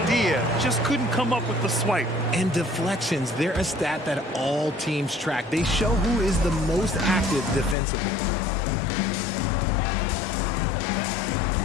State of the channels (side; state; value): right; drops out; at 7.8 s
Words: just couldn't come up with the swipe. And deflections, they're a stat that all teams track. They show who is the most active defensively.